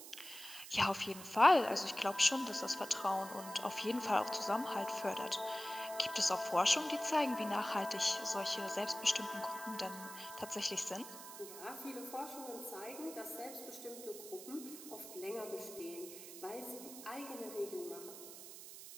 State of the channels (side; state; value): right; noise; hiss, 13 dB below the sound